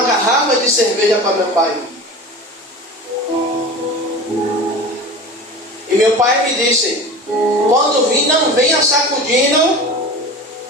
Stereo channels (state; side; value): normal; both; correlation 0.33